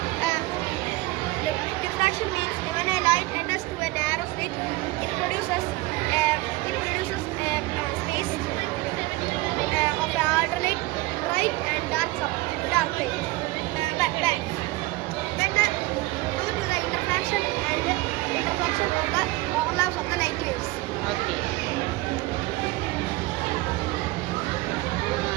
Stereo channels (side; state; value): left; quieter; 20.5 dB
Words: Diffraction means when a light enters to a narrow slit, it produces a space of the alternate bright and dark light. Due to the interfraction and interfraction of the overlaps of the light waves. Okay.